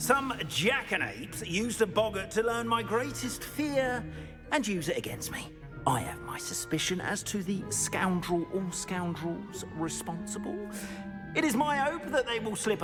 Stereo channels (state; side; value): identical; both; correlation 1.00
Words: jackanapes used a boggart to learn my greatest fear and use it against me. I have my suspicion as to the scoundrel or scoundrels responsible. It is my hope that they will slip